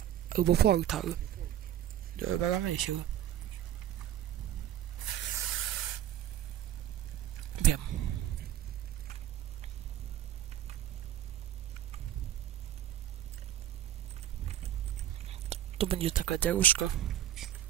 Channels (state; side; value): quieter; left; 11.7 dB